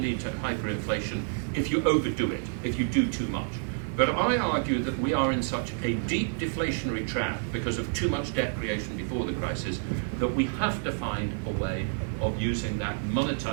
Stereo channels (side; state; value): left; silent; digital silence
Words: to hyperinflation if you overdo it, if you do too much. But I argue that we are in such a deep deflationary trap because of too much debt creation before the crisis that we have to find a way of using that